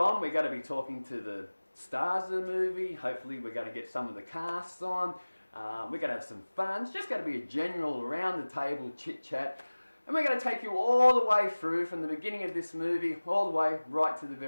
We're going to be talking to the stars of the movie. Hopefully we're going to get some of the casts on. We're going to have some fun. It's just going to be a general around the table chit chat. And we're going to take you all the way through from the beginning of this movie all the way right to the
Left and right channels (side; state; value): both; inverted; correlation -1.00